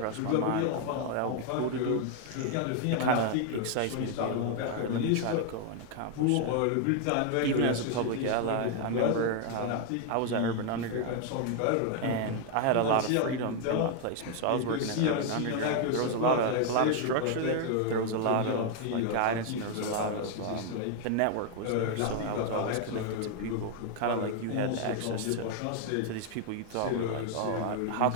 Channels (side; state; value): both; different; correlation 0.00